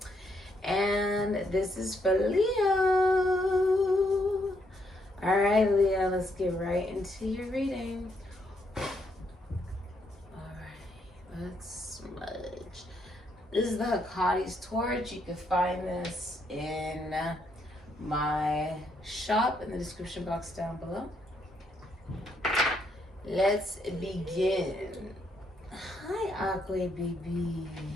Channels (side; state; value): both; normal; correlation 0.75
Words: And this is for Leo. All right, Leo, let's get right into your reading. All right, let's smudge. This is the Hecata's torch. You can find this in my shop in the description box down below. Let's begin. Hi, Aqua baby.